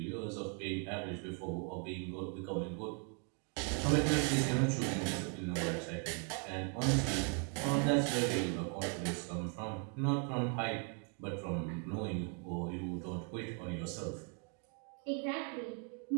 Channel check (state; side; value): quieter; left; 39.6 dB